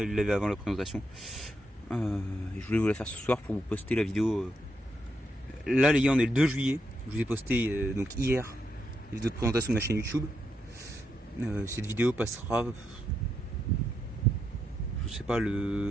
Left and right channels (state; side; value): normal; both; correlation 0.81